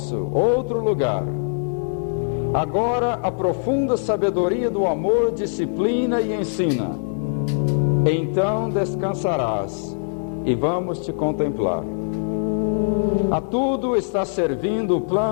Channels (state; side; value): silent; right; digital silence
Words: outro lugar. Agora a profunda sabedoria do amor disciplina e ensina. Então descansarás e vamos te contemplar. A tudo está servindo o